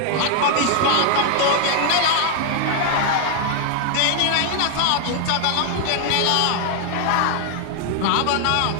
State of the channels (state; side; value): different; both; correlation 0.00